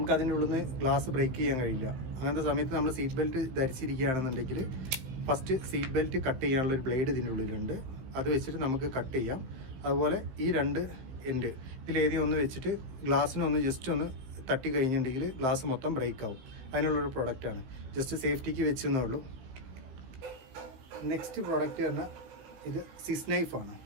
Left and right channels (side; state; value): left; late; 16 ms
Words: അതിൻ്റെ ഉള്ളിൽ നിന്ന് ഗ്ലാസ് ബ്രേക്ക് ചെയ്യാൻ കഴിയില്ല. അങ്ങനത്തെ സമയത്ത് നമ്മൾ സീറ്റ് ബെൽറ്റ് ധരിച്ചിരിക്കുകയാണെന്നുണ്ടെങ്കിൽ ഫസ്റ്റ് സീറ്റ് ബെൽറ്റ് കട്ട് ചെയ്യാനുള്ളൊരു ബ്ലേഡ് ഇതിൻ്റെ ഉള്ളിലുണ്ട്. അത് വെച്ചിട്ട് നമുക്ക് കട്ട് ചെയ്യാം. അതുപോലെ ഈ 2 എൻഡ് ഇതിലേതെങ്കിലും ഒന്ന് വെച്ചിട്ട് ഗ്ലാസ്സിനൊന്ന് ജസ്റ്റ് ഒന്ന് തട്ടി കഴിഞ്ഞിട്ടുണ്ടെങ്കിൽ ഗ്ലാസ് മൊത്തം ബ്രേക്ക് ആവും. അതിനുള്ളൊരു പ്രൊഡക്റ്റാണ്. ജസ്റ്റ് സേഫ്റ്റിക്ക് വെച്ചെന്നേ ഉള്ളൂ. നെക്സ്റ്റ് പ്രോഡക്റ്റ് പറഞ്ഞാൽ ഇത് സിസ് നൈഫാണ്.